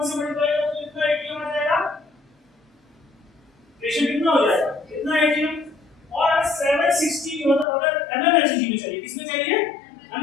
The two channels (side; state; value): right; drops out; at 7.7 s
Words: से मल्टीप्लाई करोगे तो कितना एटीएम आ जाएगा, प्रेशर कितना हो जाएगा इतना एटीएम। और 760 मतलब अगर mmHg में चाहिए, किसमें चाहिए